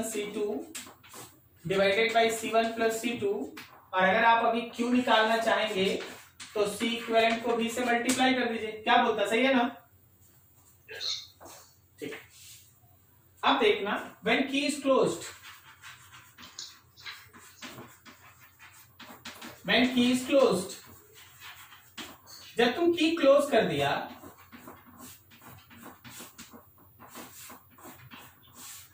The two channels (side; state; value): both; identical; correlation 1.00